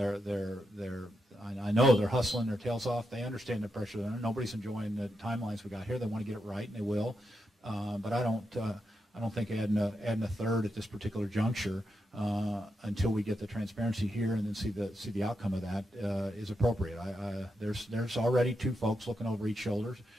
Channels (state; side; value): normal; both; correlation 0.85